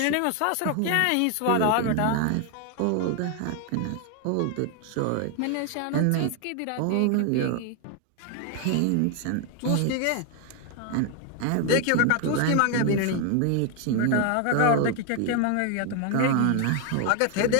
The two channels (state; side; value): different; both; correlation 0.01